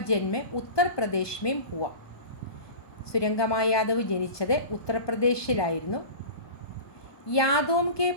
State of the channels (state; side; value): late; right; 1.2 ms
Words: जन्म उत्तर प्रदेश में हुआ. സുരംഗമ യാദവ് ജനിച്ചത് ഉത്തർപ്രദേശിലായിരുന്നു. യാദോം കെ